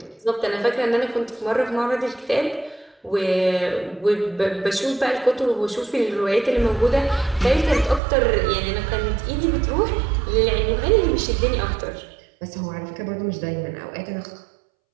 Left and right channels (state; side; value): drops out; left; at 8.0 s